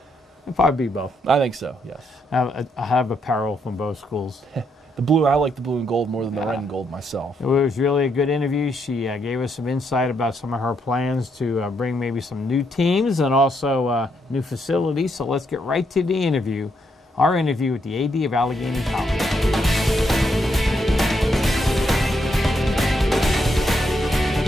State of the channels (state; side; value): normal; both; correlation 0.77